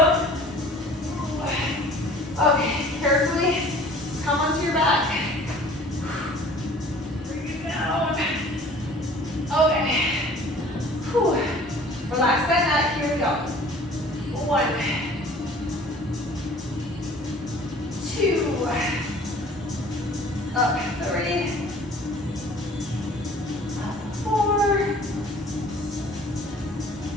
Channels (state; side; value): normal; both; correlation 0.49